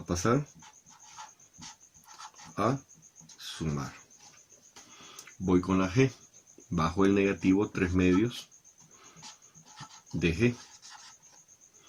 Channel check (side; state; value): both; identical; correlation 1.00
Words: a pasar a sumar. Voy con la g, bajo el negativo 3/2 de g.